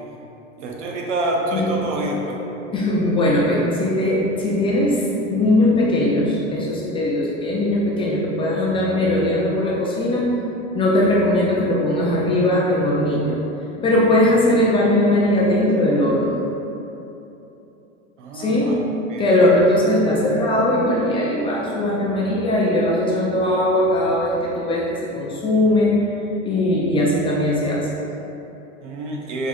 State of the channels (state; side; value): normal; both; correlation 0.34